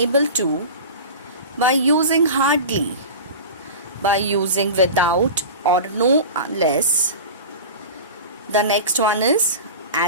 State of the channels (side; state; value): both; inverted; correlation -0.32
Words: to, by using hardly, by using without or no unless. The next one is